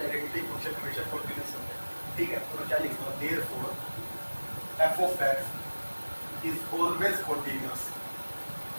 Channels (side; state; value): both; inverted; correlation -1.00